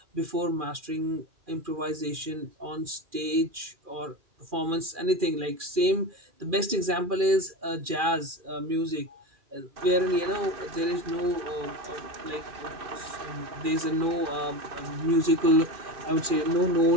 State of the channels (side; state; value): left; late; 2.4 ms